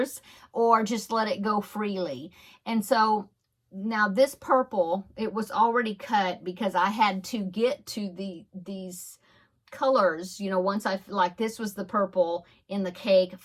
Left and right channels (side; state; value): both; identical; correlation 1.00